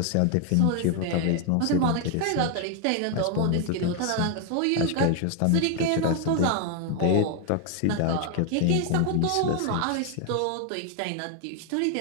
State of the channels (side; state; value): both; different; correlation 0.01